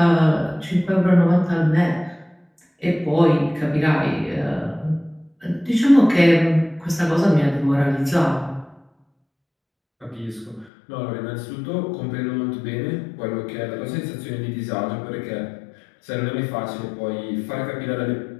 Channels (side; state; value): right; drops out; at 10.7 s